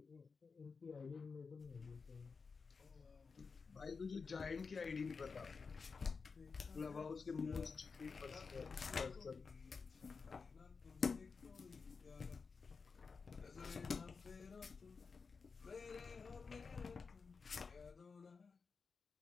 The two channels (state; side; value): quieter; right; 5.0 dB